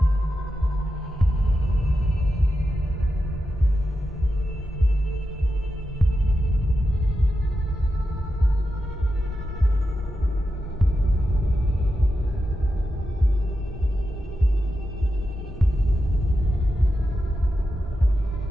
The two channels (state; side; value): normal; both; correlation 0.89